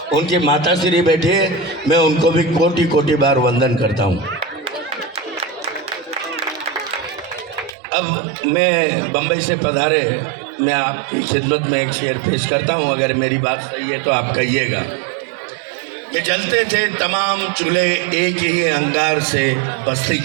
उनकी माताश्री बैठे हैं, मैं उनको भी कोटि कोटि बार वंदन करता हूँ। अब मैं बम्बई से पधारे, मैं आपकी खिदमत में एक शेर पेश करता हूँ। अगर मेरी बात सही है तो आप कहिएगा कि जलते थे तमाम चूल्हे एक ही अंगार से बस्ती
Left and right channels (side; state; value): left; drops out; at 7.7 s